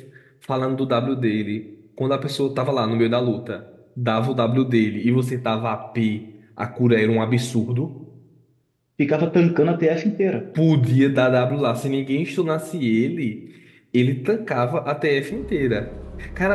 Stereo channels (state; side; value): identical; both; correlation 1.00